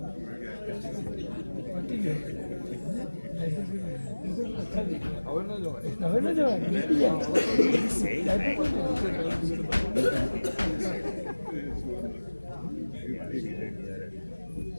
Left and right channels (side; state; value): both; inverted; correlation -1.00